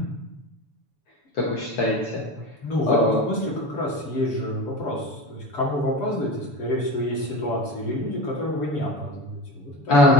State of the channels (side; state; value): right; late; 7.0 ms